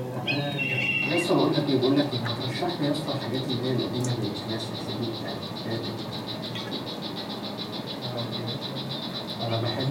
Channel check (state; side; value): identical; both; correlation 1.00